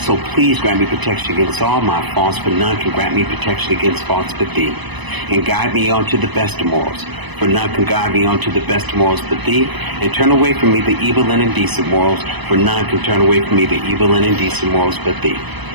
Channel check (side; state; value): left; late; 1.0 ms